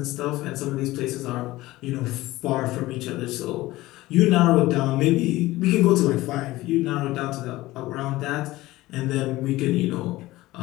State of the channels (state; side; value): quieter; right; 18.0 dB